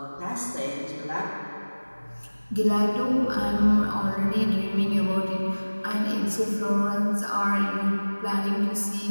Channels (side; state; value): both; inverted; correlation -1.00